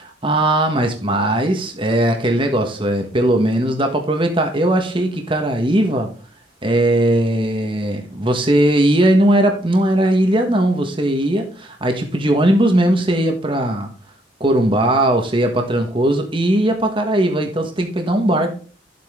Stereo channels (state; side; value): normal; both; correlation 0.68